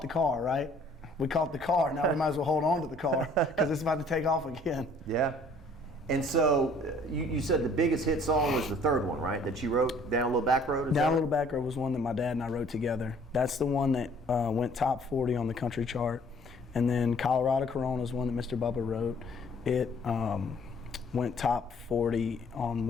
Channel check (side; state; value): both; normal; correlation 0.57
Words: the car, right? We caught the car, now we might as well hold on to the car because it's about to take off again. Yeah. And so you said the biggest hit song was the third one, right? That you wrote, Down a Little Back Road? Down a Little Back Road was one that my dad and I wrote together. That's the one that went top 40 on the country chart. And then Colorado Corona is one that Mr. Bubba wrote. It went top 40 on